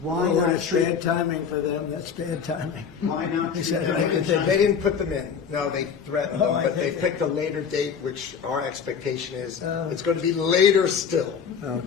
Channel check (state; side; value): quieter; right; 6.8 dB